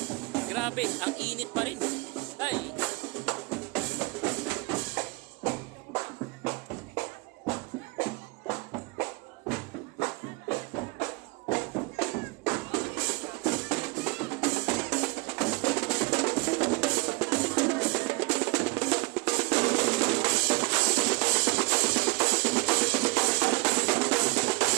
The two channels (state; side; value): quieter; left; 26.1 dB